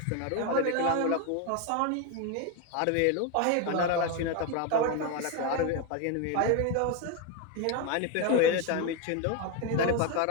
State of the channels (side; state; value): both; different; correlation 0.02